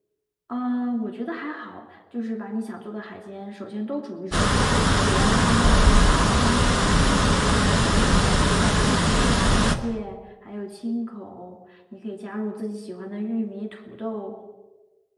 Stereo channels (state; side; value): identical; both; correlation 1.00